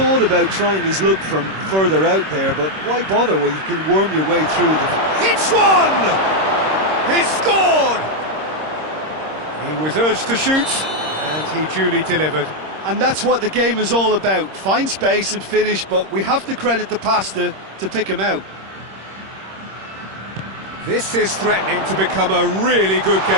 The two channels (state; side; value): late; left; 26 ms